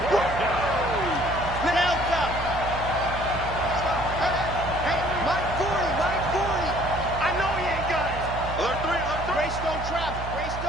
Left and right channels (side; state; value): right; noise; hum, 7 dB below the sound